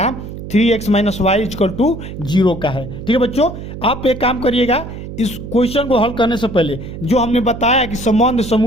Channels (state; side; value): noise; right; hum, 10 dB below the sound